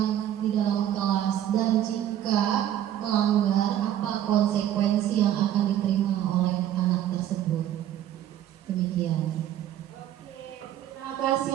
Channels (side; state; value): left; quieter; 11.4 dB